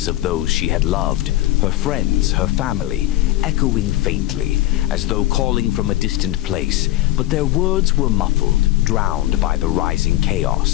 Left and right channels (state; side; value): quieter; right; 15.9 dB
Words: of those she had loved, her friends, her family, echoing faintly, as though calling from a distant place, but their words were muffled, drowned by the rising